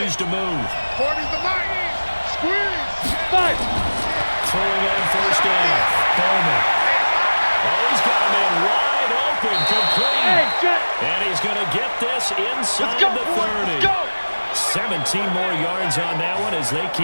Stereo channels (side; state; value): both; inverted; correlation -1.00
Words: to move. 40's the line. Squeeze. 5. Throwing on first down. Bowman. Oh, he's got a man wide open, complete. And he's going to get this inside the 30. 17 more yards on that one as they